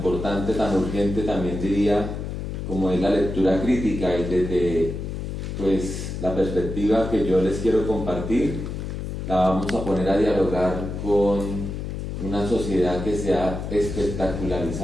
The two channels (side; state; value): left; noise; hum, 5 dB below the sound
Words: tan urgente, también diría, como es la lectura crítica, y desde la perspectiva que yo les quiero compartir, la vamos a poner a dialogar con una sociedad que se ha